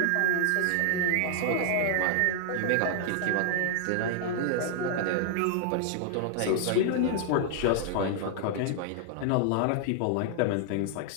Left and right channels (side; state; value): both; different; correlation 0.00